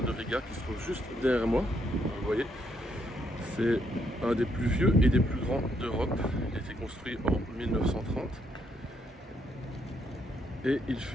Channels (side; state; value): both; normal; correlation 0.74